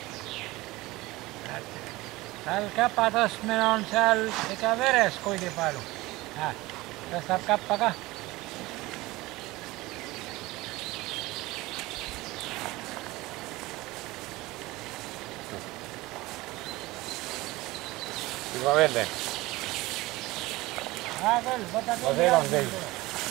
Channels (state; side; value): quieter; left; 20.0 dB